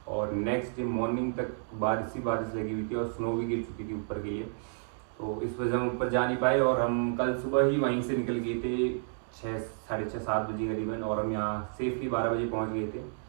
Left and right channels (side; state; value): left; silent; digital silence